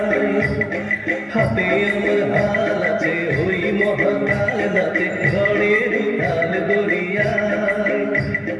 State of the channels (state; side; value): identical; both; correlation 1.00